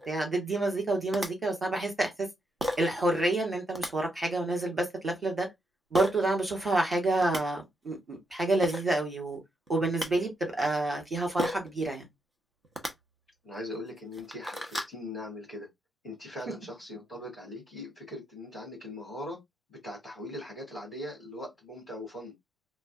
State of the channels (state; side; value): normal; both; correlation 0.80